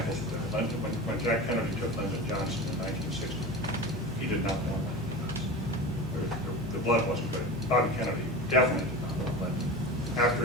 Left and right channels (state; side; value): normal; both; correlation 0.29